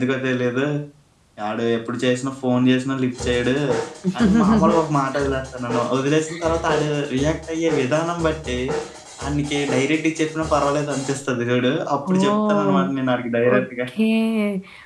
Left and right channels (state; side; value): identical; both; correlation 1.00